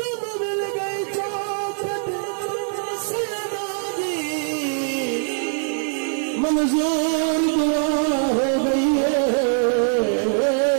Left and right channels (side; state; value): left; silent; digital silence